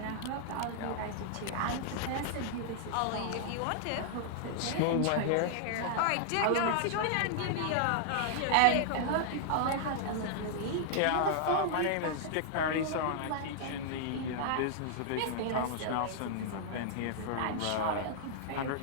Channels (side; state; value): both; different; correlation -0.01